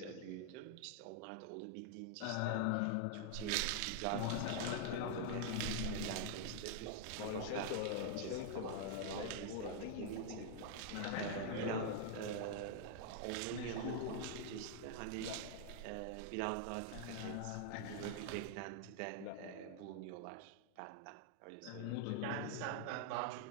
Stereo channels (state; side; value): different; both; correlation 0.00